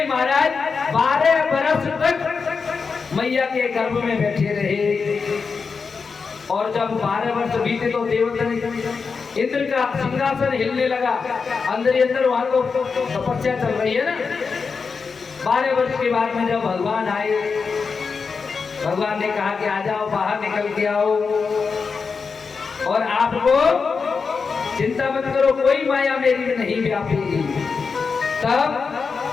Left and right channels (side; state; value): right; quieter; 5.1 dB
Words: महाराज 12 वर्ष तक मैया के गर्भ में बैठे रहे। और जब 12 वर्ष बीते तो देवता इंद्र का सिंहासन हिलने लगा, अंदर ही अंदर वहां तो तपस्या चल रही है ना। 12 वर्ष के बाद में जब भगवान आए, भगवान ने कहा कि आ जाओ बाहर निकल के आओ, और आपको चिंता मत करो, कोई माया मेरी में नहीं व्यापेगी। तब